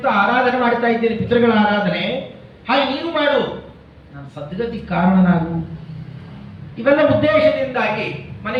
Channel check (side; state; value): both; identical; correlation 1.00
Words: ಆರಾಧನೆ ಮಾಡ್ತಾ ಇದ್ದೇನೆ, ಪಿತೃಗಳ ಆರಾಧನೆ, ಹಾಗೆ ನೀನು ಮಾಡು, ನಾನು ಸದ್ಗತಿ ಕಾರಣನಾಗು. ಇವೆಲ್ಲ ಉದ್ದೇಶದಿಂದಾಗಿ